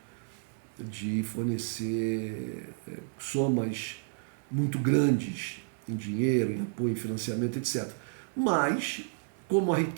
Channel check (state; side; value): silent; left; digital silence